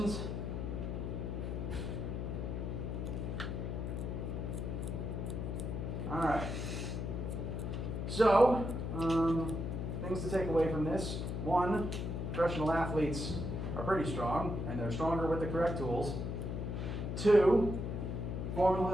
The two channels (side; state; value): left; noise; hum, 3 dB below the sound